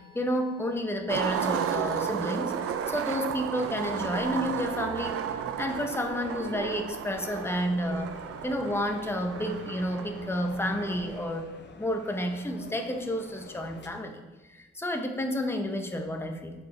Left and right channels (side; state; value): both; normal; correlation 0.51